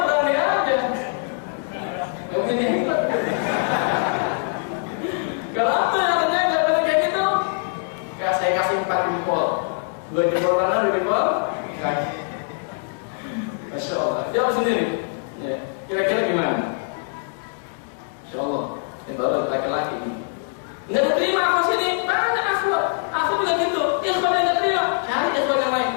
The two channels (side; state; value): right; silent; 63 dB below the other